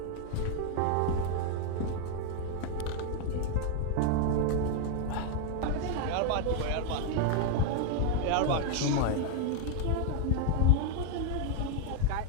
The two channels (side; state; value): both; different; correlation 0.01